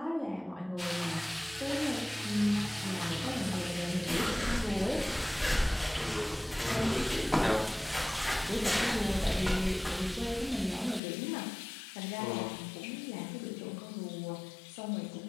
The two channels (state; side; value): drops out; right; at 11.0 s